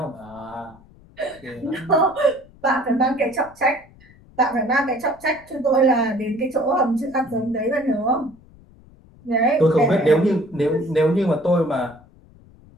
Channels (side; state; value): left; noise; rumble, 25 dB below the sound